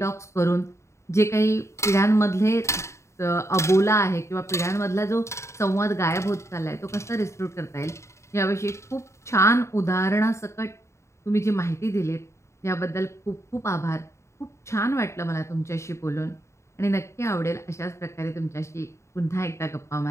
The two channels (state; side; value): late; right; 0.14 ms